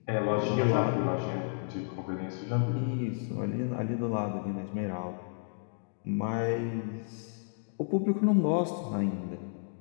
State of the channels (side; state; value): right; silent; digital silence